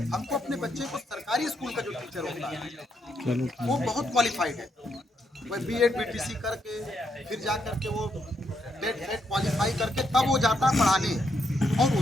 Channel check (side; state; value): both; normal; correlation 0.78